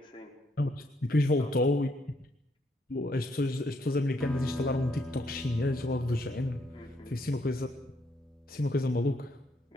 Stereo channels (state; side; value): normal; both; correlation 0.73